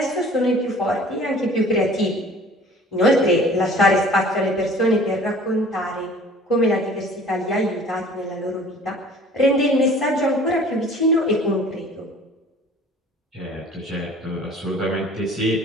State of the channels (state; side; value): normal; both; correlation 0.49